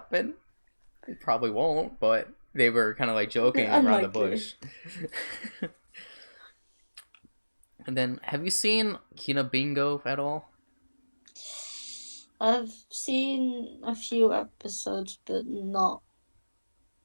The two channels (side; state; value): both; inverted; correlation -1.00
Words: It probably won't, but they were kind of like joking around the bush. And then, have you seen Kina Bingo at all? I've seen a few episodes, but not.